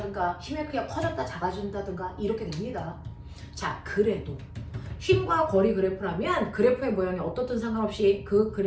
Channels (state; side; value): identical; both; correlation 1.00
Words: 힘의 크기가 커졌다 작아진다든가 이렇게 됩니다. 자, 그래도 힘과 거리 그래프라면 그래프의 모양이 어떻든 상관없이 그